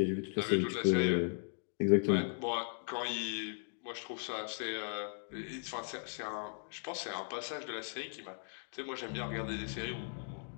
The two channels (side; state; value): right; silent; digital silence